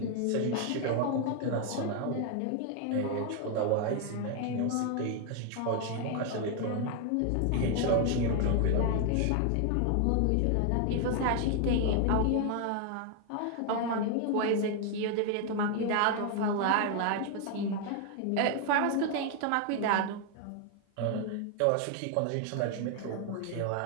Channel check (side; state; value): both; different; correlation 0.00